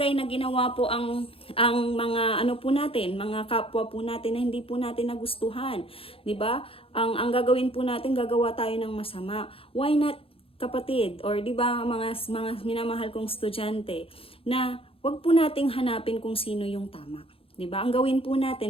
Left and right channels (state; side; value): late; right; 0.27 ms